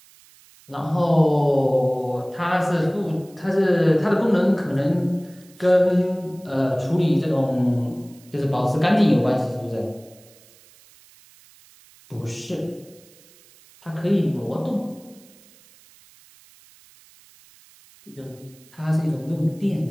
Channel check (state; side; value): noise; right; hiss, 27 dB below the sound